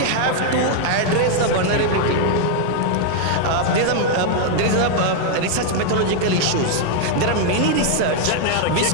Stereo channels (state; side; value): different; both; correlation 0.00